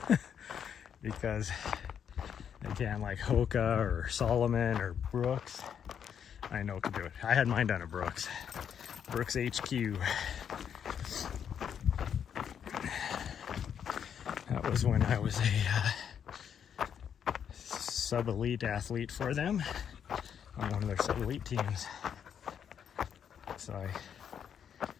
because they can, like Hoka or Solomon or Brooks. I know can do it. I had mine done at Brooks HQ. That was when I was a sub-elite athlete for them on one of their sub-elite teams. So I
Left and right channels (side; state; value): right; quieter; 8.2 dB